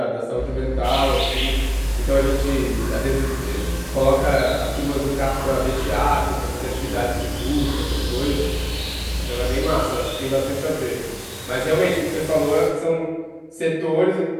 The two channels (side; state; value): both; identical; correlation 1.00